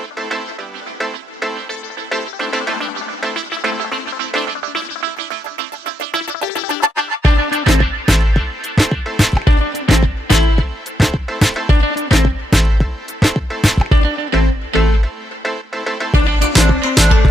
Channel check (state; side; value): normal; both; correlation 0.83